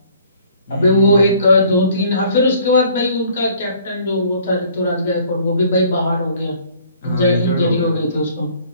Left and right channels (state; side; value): inverted; both; correlation -0.57